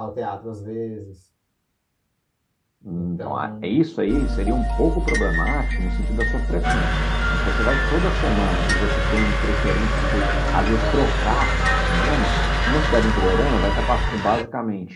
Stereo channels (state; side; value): identical; both; correlation 1.00